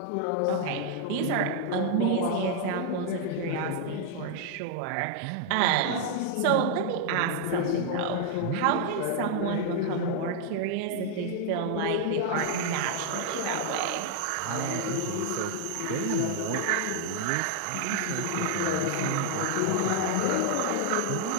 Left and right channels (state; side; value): different; both; correlation 0.00